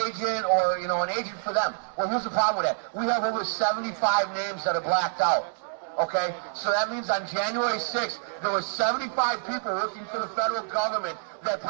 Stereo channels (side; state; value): left; silent; digital silence